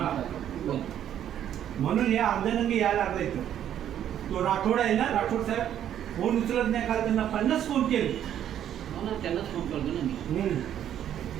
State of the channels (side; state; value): left; quieter; 10.4 dB